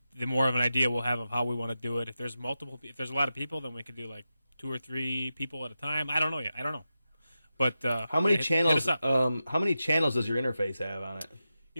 more of an idea we'll have of how we want to do it. If there's a lot of people, then we could do 2 or 3 people at a time. I don't know yet. I don't know. But how many channels? Hit us up. How many channels does your interface have on it?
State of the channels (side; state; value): both; inverted; correlation -0.90